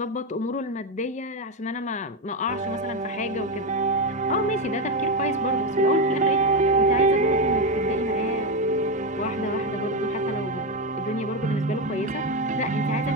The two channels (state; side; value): normal; both; correlation 0.11